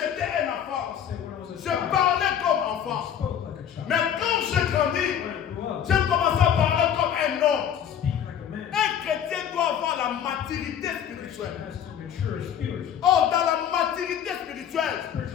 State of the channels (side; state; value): right; quieter; 9.1 dB